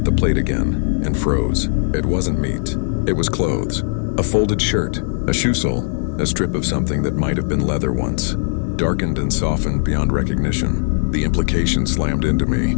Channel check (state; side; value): silent; right; 63 dB below the other